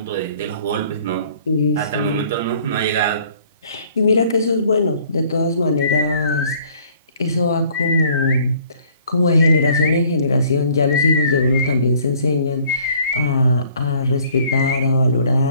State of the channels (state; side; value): inverted; both; correlation -0.58